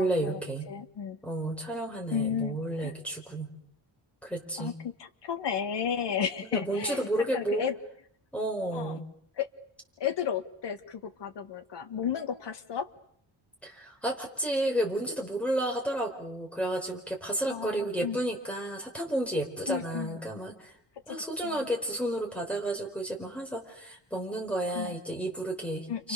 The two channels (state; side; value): normal; both; correlation 0.41